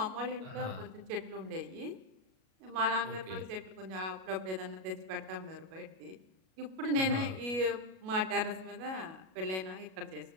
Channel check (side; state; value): left; late; 37 ms